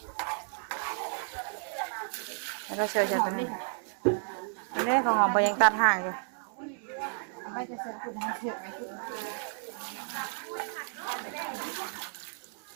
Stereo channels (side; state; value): left; silent; 56 dB below the other